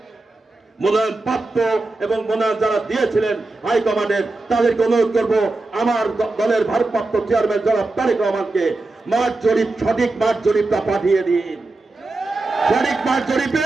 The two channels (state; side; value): quieter; left; 3.2 dB